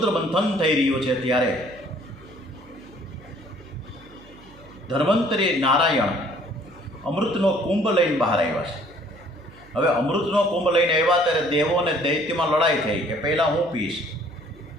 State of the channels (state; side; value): noise; right; hum, 23 dB below the sound